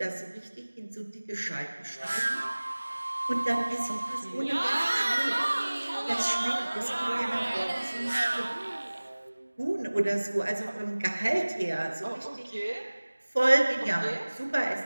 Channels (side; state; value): both; inverted; correlation -1.00